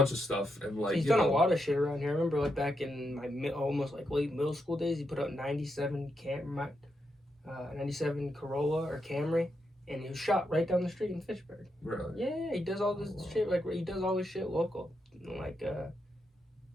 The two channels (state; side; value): normal; both; correlation 0.83